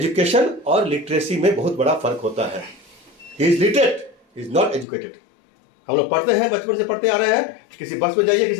और लिटरेसी में बहुत बड़ा फर्क होता है। He is literate, he is not educated. हम लोग पढ़ते हैं, बचपन से पढ़ते आ रहे हैं। किसी बस में जाइए,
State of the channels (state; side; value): drops out; right; at 4.9 s